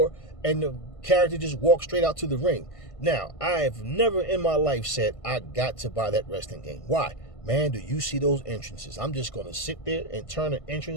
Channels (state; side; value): late; right; 1.5 ms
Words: and the character just walks straight out to the ring. Now, I have never in my life said I got to buy that wrestling game. Why? Man, do you see those entrances? I'm just going to sit there and turn the